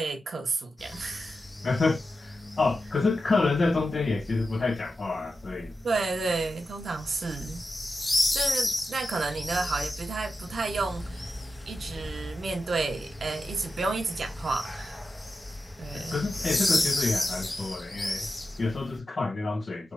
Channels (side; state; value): both; normal; correlation 0.91